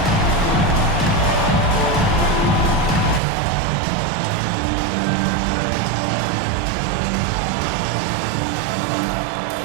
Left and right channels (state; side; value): drops out; left; at 3.2 s